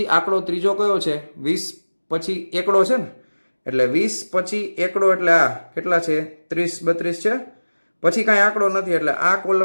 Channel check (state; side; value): inverted; both; correlation -1.00